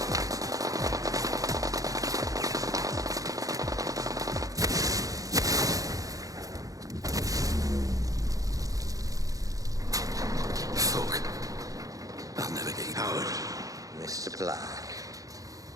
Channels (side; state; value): left; late; 0.17 ms